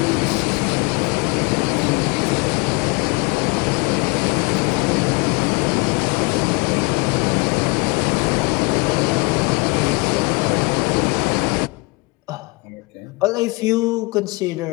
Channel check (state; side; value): quieter; right; 26.8 dB